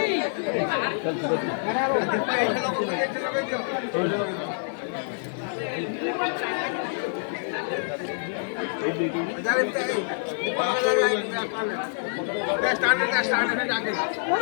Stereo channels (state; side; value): silent; right; 61 dB below the other